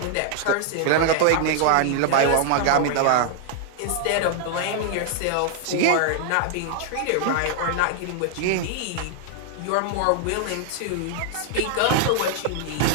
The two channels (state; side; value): different; both; correlation 0.00